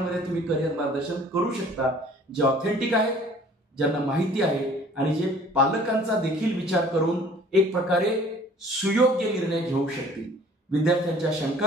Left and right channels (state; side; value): normal; both; correlation 0.52